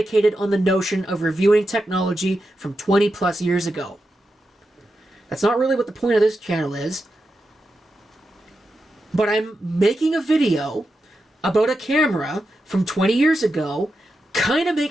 on the notion of reviewing technology from 20 plus years ago. That's not really what the point of this channel is. But I'm making a video about a camera from 20 years ago. Kind of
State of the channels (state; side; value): normal; both; correlation 0.89